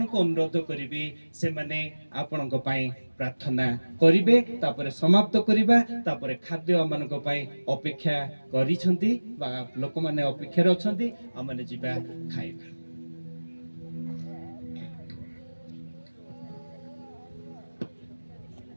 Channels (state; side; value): inverted; both; correlation -1.00